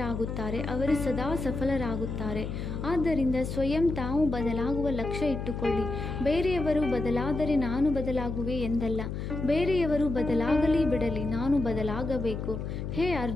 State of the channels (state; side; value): noise; left; hum, 5 dB below the sound